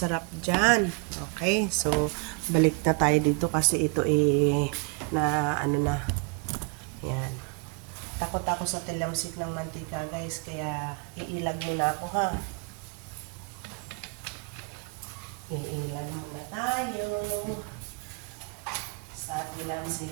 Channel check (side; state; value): left; quieter; 30.4 dB